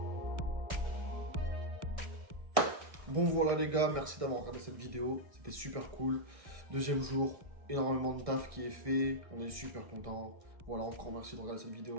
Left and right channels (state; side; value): late; left; 1.6 ms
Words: Bon voilà les gars, merci d'avoir regardé cette vidéo, c'était super cool. Deuxième jour, énormément de taf qui est fait, on est super contents. Voilà, encore merci de regarder cette